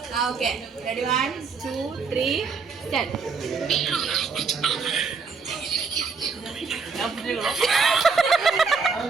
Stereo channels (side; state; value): left; quieter; 5.1 dB